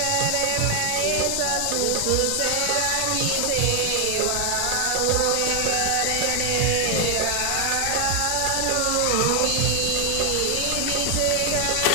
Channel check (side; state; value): both; different; correlation 0.00